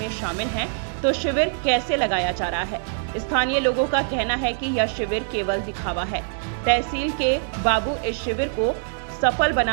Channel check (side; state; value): left; silent; 59 dB below the other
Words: शामिल हैं तो शिविर कैसे लगाया जा रहा है। स्थानीय लोगों का कहना है कि यह शिविर केवल दिखावा है। तहसील के बाबू इस शिविर को सफल